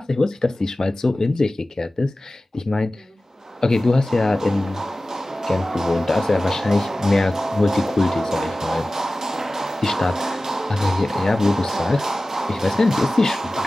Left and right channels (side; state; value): both; normal; correlation 0.96